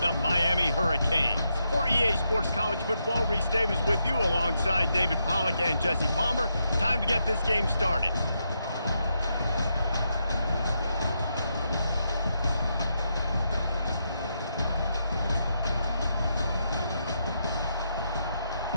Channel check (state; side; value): inverted; both; correlation -0.82